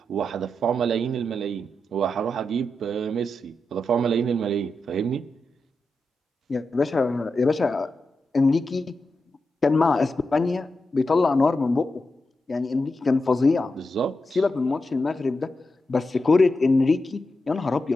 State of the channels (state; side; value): normal; both; correlation 0.88